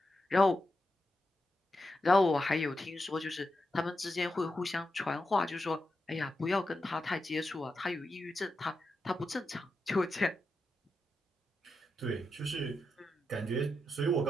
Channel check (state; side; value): normal; both; correlation 0.87